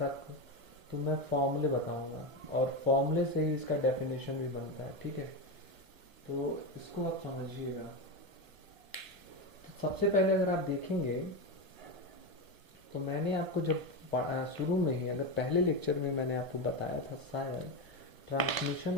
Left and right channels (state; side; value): late; left; 1.5 ms